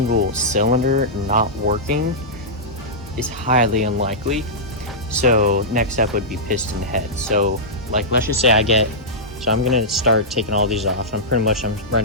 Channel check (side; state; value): both; normal; correlation -0.12